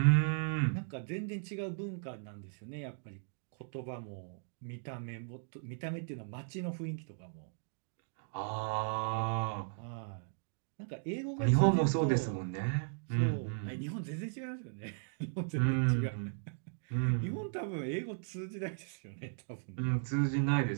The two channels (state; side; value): silent; left; digital silence